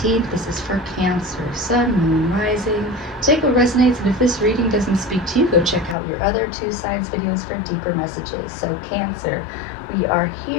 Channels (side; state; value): right; drops out; at 6.0 s